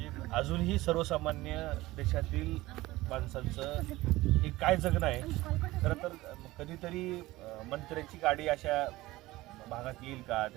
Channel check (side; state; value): left; quieter; 18.5 dB